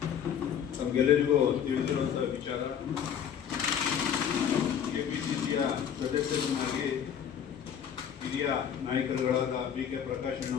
ನಮಗೆಲ್ಲರಿಗೂ ತಿಳಿದಿರುವಂತಹ ವಿಚಾರ. ಕೆಪಿಸಿಸಿಯ ಸದಸ್ಯರನ್ನಾಗಿ ಹಿರಿಯ ನಾಯಕರುಗಳಾದ BK ಪ್ರಕಾಶ್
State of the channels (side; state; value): right; quieter; 8.6 dB